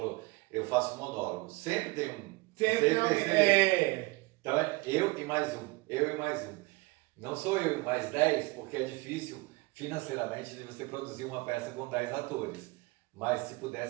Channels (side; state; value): left; quieter; 23.6 dB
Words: eu faço monólogo. Sempre tem um. Sempre tem. Então é eu e mais um. Eu e mais um. Não sou eu e mais 10, porque é difícil financeiramente de você produzir uma peça com 10 atores. Mas se